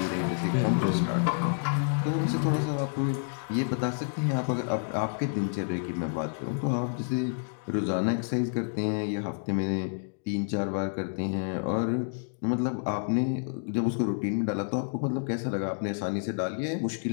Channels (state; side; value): silent; right; digital silence